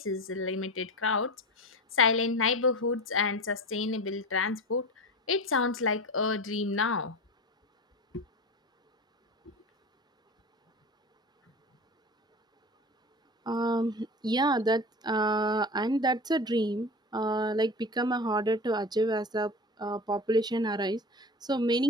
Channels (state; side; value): normal; both; correlation 0.30